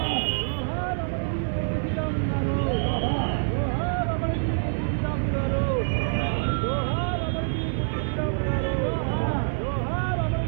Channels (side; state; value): left; silent; 61 dB below the other